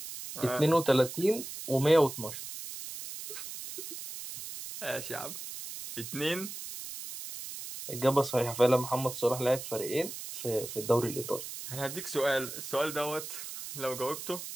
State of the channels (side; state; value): right; noise; hiss, 9 dB below the sound